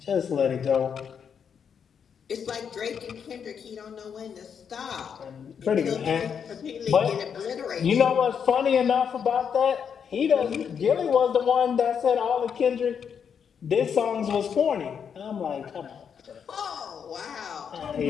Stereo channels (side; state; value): right; quieter; 7.3 dB